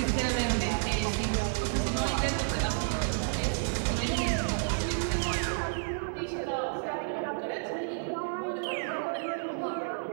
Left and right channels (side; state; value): left; silent; digital silence